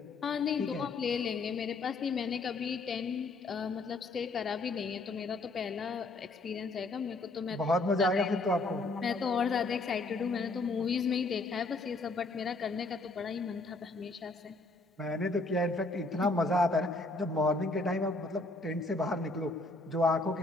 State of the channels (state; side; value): quieter; right; 3.2 dB